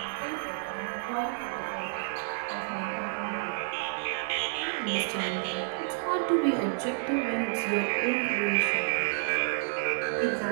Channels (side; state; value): left; silent; 58 dB below the other